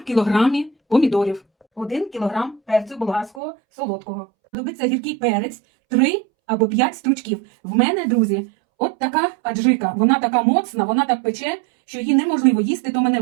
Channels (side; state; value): left; drops out; at 3.4 s